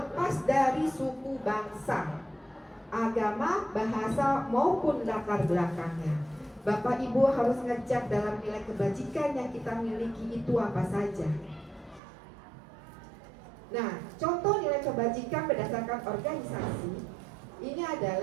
dari suku bangsa, agama, bahasa maupun latar belakangnya. Bapak Ibu harus ngecek dalam nilai kebajikan yang kita miliki itu apa saja. Nah, contoh nilai kebajikan berdasarkan organisasi ini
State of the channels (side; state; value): left; drops out; at 12.0 s